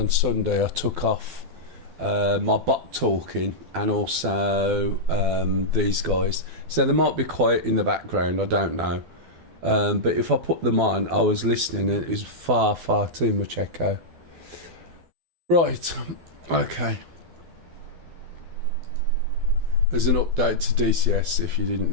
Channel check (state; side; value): late; left; 12 ms